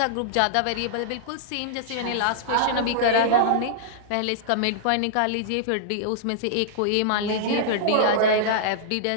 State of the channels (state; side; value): different; both; correlation -0.01